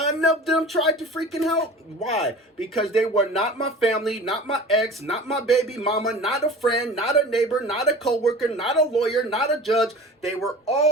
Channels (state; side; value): normal; both; correlation 0.39